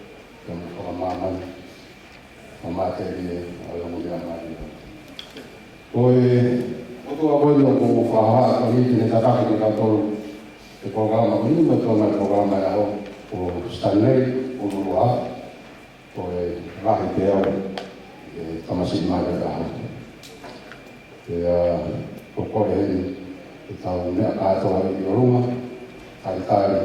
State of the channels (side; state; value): both; identical; correlation 1.00